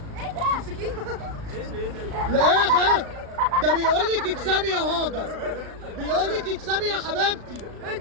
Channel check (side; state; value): left; late; 36 ms